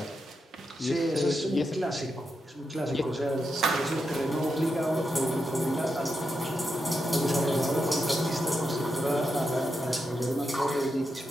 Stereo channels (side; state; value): both; normal; correlation 0.86